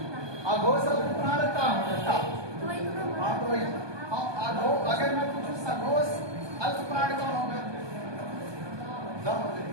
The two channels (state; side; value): late; left; 1.2 ms